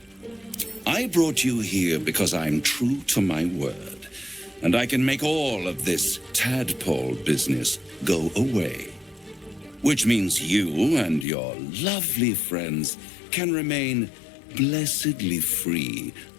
I brought you here because I'm true to my word, and I can make all of this tadpole business go away. which means you and your lovely friends can remain blessedly free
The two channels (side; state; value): right; drops out; at 11.2 s